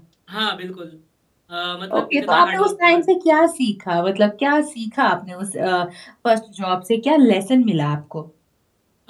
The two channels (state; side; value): identical; both; correlation 1.00